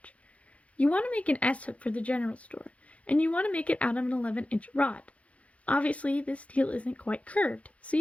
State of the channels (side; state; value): right; late; 0.064 ms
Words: You want to make an S-hook for the general store, and you want to make it out of an 11-inch rod. Obviously, this steel isn't quite curved, so